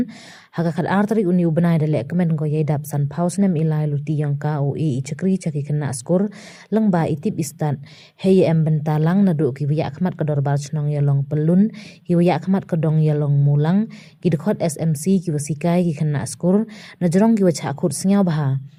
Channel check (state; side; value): identical; both; correlation 1.00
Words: haga khat arteri uni ubenai de lekmen ko yedap san pausnem ilai luti yang ka o e chakri chaki kena skor lengba itip istan hey em bentalang nado ki wiya khmat kador bar chnong yalong pelun ki wiya khmat kadong yalong mulang ki dekhot SMC ki wasikai ki kena skor na jorong ki wacha khut singyaw baha